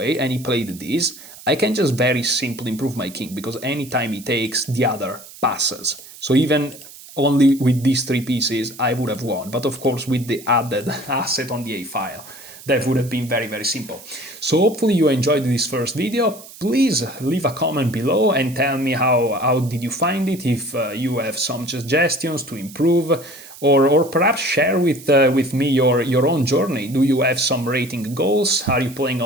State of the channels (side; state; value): right; noise; hiss, 18 dB below the sound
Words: and he played this, I can just very simply improve my king, because anytime he takes, the other passes. So even only with these three pieces, I would have won. But of course, with the added asset on the A file, that would have been very, very simple. So hopefully you enjoyed this first video. Please leave a comment below and tell me how did you find it, if you have some suggestions to improve, or perhaps share with me your own journey. Do you have some rating goals? Are you playing